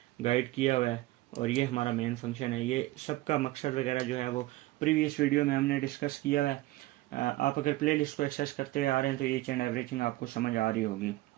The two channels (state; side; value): quieter; left; 17.8 dB